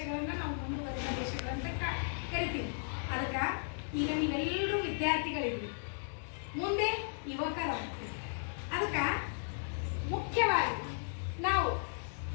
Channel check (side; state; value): right; silent; digital silence